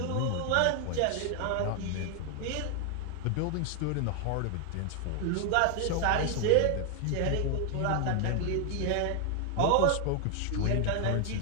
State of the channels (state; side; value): different; both; correlation 0.00